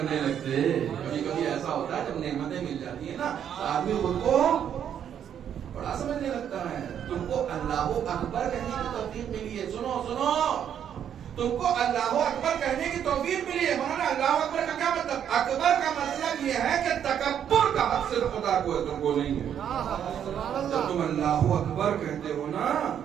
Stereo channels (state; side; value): quieter; left; 9.1 dB